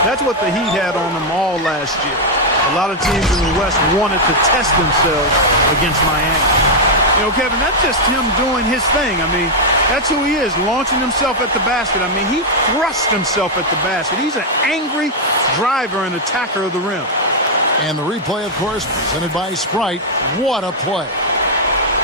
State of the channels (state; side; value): normal; both; correlation -0.01